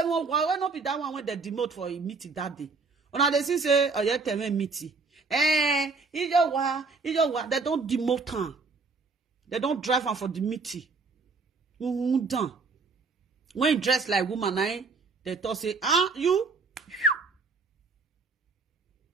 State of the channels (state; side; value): quieter; left; 4.3 dB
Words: why not be that one when they demote for a meeting that day? Una they say, oh, yeah, tell me meeting. They don't demote her. They don't drive her for the meeting. Done. When you dress like woman, they talk say, you?